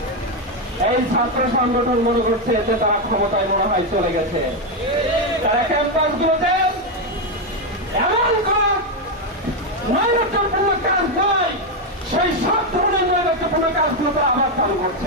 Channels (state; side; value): normal; both; correlation 0.05